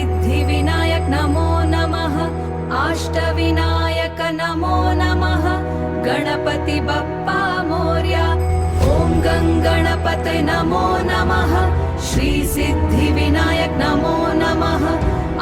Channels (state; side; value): identical; both; correlation 1.00